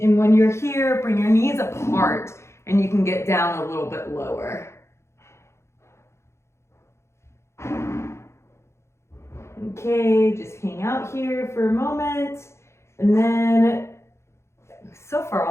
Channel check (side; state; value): right; late; 0.13 ms